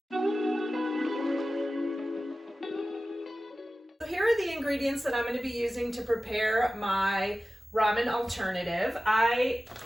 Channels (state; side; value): normal; both; correlation 0.95